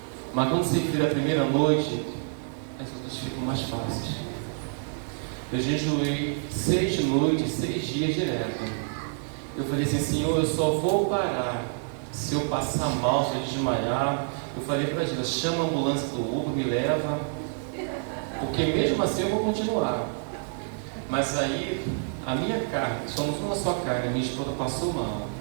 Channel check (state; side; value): silent; left; digital silence